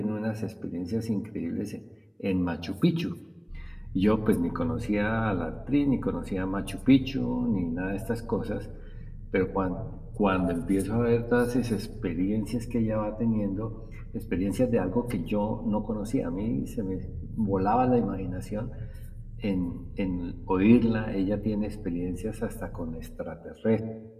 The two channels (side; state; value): both; identical; correlation 1.00